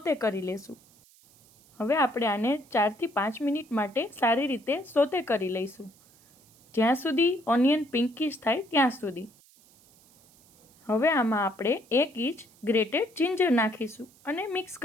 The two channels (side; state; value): right; noise; hiss, 28 dB below the sound